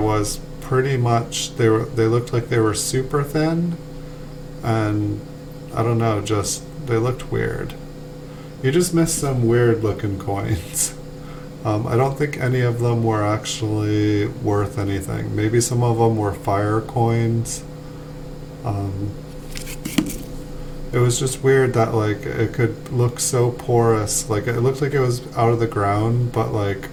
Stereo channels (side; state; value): both; identical; correlation 1.00